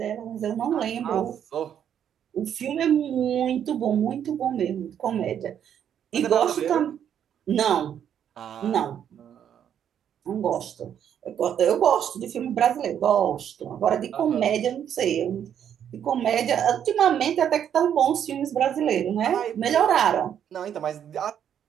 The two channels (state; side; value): quieter; left; 9.2 dB